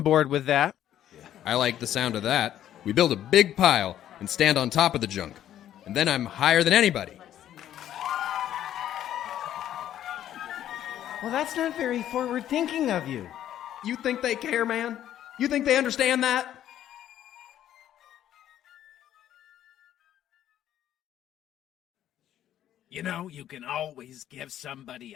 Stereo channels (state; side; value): quieter; right; 11.4 dB